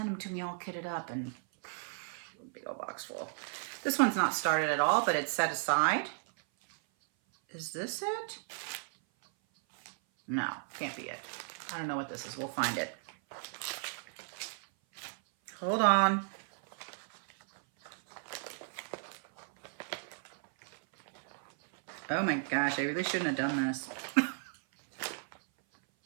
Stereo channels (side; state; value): left; silent; 55 dB below the other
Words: them to me all kitted up, and big old box full. This one's not started at all, but it's set aside. Is this it? No, can't be it. I don't know what this is. We'll find it. Hold on. Oh my gosh, I really shouldn't have done this.